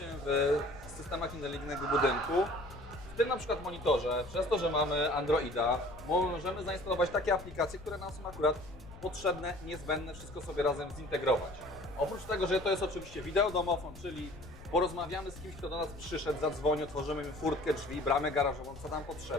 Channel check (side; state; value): left; noise; rumble, 16 dB below the sound